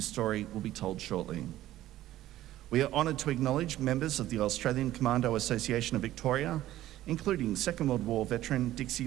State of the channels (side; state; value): left; quieter; 14.3 dB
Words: story will be told shortly. We are honoured to acknowledge members of the Australian Commando Association of Victoria, including Second World War veteran